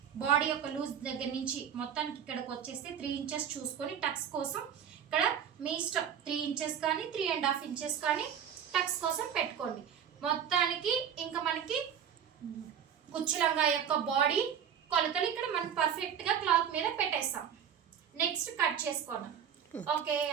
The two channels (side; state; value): left; quieter; 8.5 dB